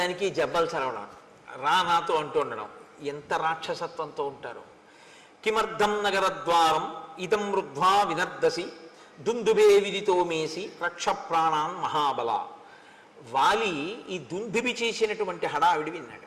దానికి జబ్బలు చదవడం, రా నాతో అంటూ ఉండడం, ఎంత రాక్షసత్వంతో ఉంటారు. కిమర్థం నగరద్వారం ఇదం రుద్ధ్వా వినర్దసి దుందుబే విదితో మేసి రక్ష ప్రాణాన్ మహాబల. వాలి ఈ దుందుబి చేసినటువంటి హడావిడి విన్నాడు.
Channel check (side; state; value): both; identical; correlation 1.00